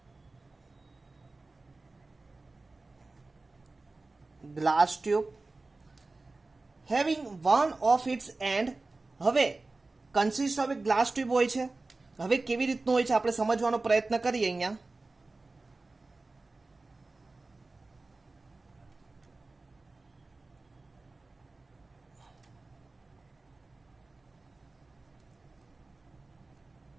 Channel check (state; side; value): quieter; left; 3.4 dB